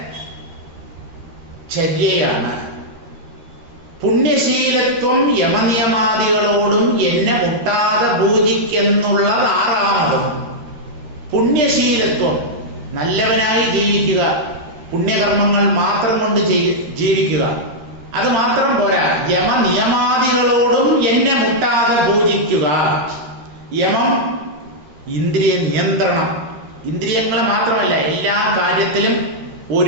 ചര്യയാണ്. പുണ്യശീലത്വം യമനിയമാദികളോടും എന്നെ മുട്ടാതെ പൂജിക്കെന്നുള്ളത് ആറാമതും. പുണ്യശീലത്വം, നല്ലവനായി ജീവിക്കുക, പുണ്യകർമ്മങ്ങൾ മാത്രം കൊണ്ട് ജീവിക്കുക. അത് മാത്രം പോരാ, യമനിയമാദികളോടും എന്നെ മുട്ടാതെ പൂജിക്കുക. യമം ഇന്ദ്രിയ നിയന്ത്രണം. ഇന്ദ്രിയങ്ങളെ മാത്രമല്ല, എല്ലാ കാര്യത്തിലും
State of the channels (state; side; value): late; left; 13 ms